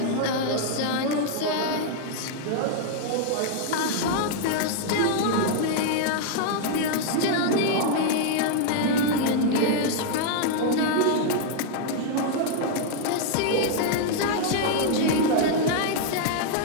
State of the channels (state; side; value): different; both; correlation 0.00